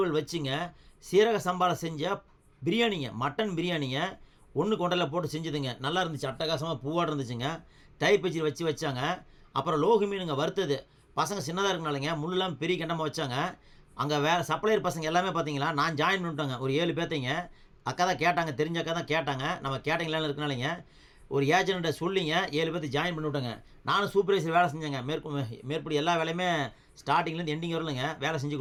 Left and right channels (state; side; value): identical; both; correlation 1.00